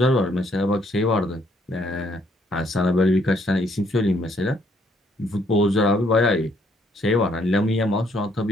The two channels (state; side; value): normal; both; correlation 0.68